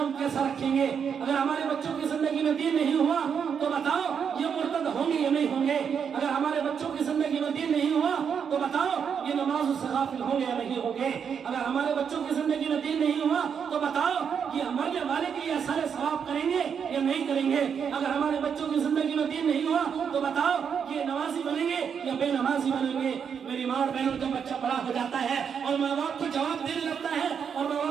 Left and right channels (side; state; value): left; quieter; 7.1 dB